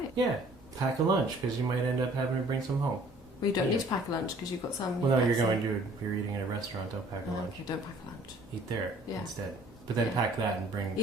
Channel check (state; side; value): normal; both; correlation 0.56